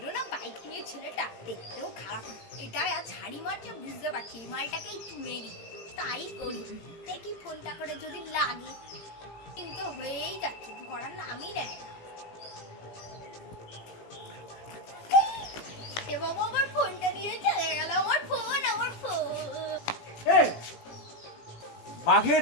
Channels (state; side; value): late; right; 17 ms